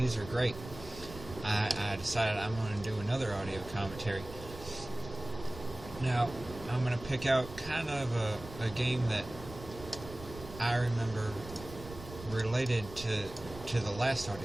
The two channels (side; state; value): right; noise; rumble, 14 dB below the sound